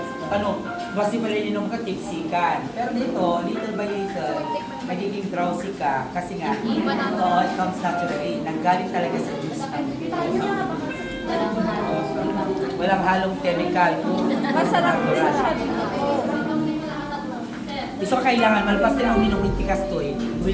Ano, basi pala inom ka, tipsikan. Pero dito, little by little, magiging drowsy ka kasi nga, it comes naturally. Nanggaling talaga sa juice ng walang halong chemical. Masarap din siya. So kailangan, malpas din ang uminom ng tikas to eh.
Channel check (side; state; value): both; identical; correlation 1.00